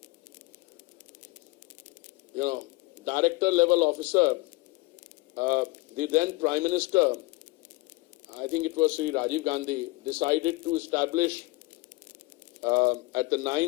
director level officer, the then Prime Minister, I think it was Shri Rajiv Gandhi, decided to establish at the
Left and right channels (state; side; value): quieter; right; 22.5 dB